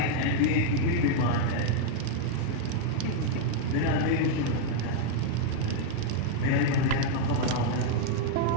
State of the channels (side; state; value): both; different; correlation 0.00